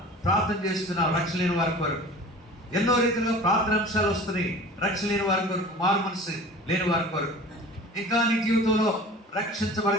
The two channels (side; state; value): both; normal; correlation 0.41